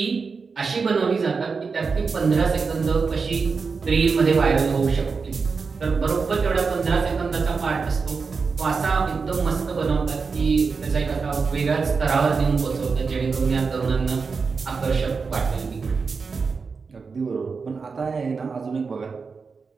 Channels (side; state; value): left; quieter; 4.9 dB